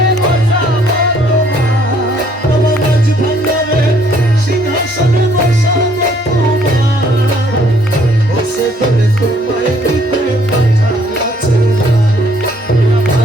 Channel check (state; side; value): normal; both; correlation 0.64